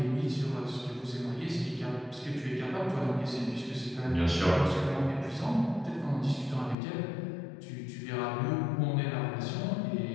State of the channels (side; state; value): right; drops out; at 6.8 s